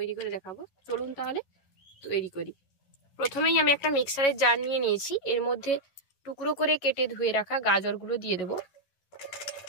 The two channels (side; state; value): right; late; 11 ms